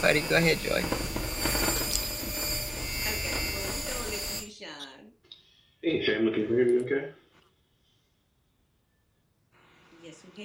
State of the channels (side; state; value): both; identical; correlation 1.00